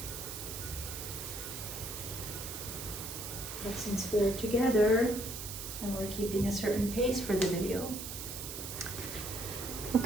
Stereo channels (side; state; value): right; noise; hiss, 7 dB below the sound